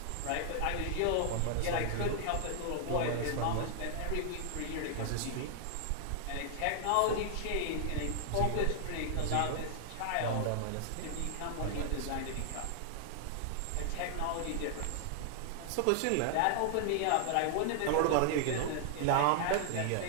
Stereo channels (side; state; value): both; different; correlation 0.00